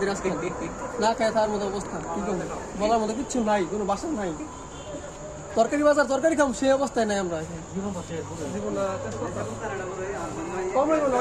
আজকে না খায় তার মতো অবস্থা কি করবো বলার মতো কিচ্ছু নাই কোনো বাসা নাই তরকারি বাজার তরকারি খাম সেই অবস্থায় নাই আমরা কম লাগবে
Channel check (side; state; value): both; identical; correlation 1.00